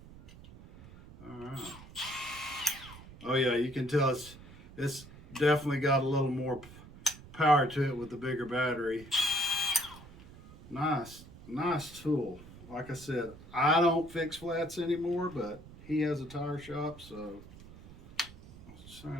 All right. Oh yeah, you can tell it's definitely got a little more power to it with the bigger battery. Nice tool. Like I said, I don't fix flats anymore, but he has a tire shop, so I was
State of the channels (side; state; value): right; noise; rumble, 18 dB below the sound